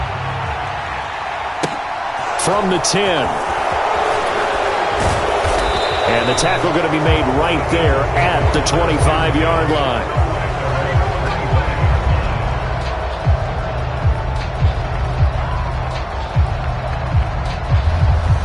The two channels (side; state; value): both; identical; correlation 1.00